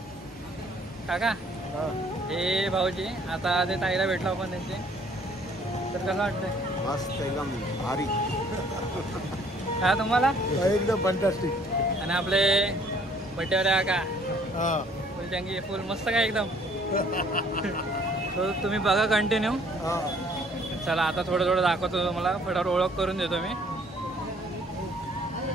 काका हे भाऊजी, आता ते ताईला भेटलो आपण त्यांचे, तर कसं वाटतंय? मस्त एकदम भारी. का तुम्हाला? एकदम फंटास्टिक. आणि आपले बड्डेवाले काका फुल जंगी फुल मस्त काय एकदम. तो तुम्ही बघा कंटिन्यू. चला आता थोडं थोडं दाखवतो तुम्हाला, फटाफट ओळख करून देतो मी.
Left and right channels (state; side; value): normal; both; correlation 0.59